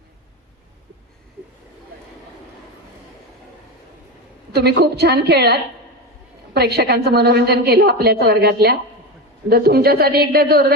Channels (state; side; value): normal; both; correlation 0.19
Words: तुम्ही खूप छान खेळलात, प्रेक्षकांचं मनोरंजन केलं आपल्याच वर्गातल्या. जर तुमच्यासाठी एकदा